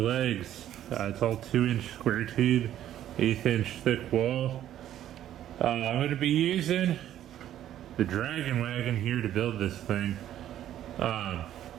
It's all 2-inch square tube, 1/8-inch thick wall. I'm gonna be using the Dragon Wagon here to build this thing. So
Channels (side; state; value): left; quieter; 11.7 dB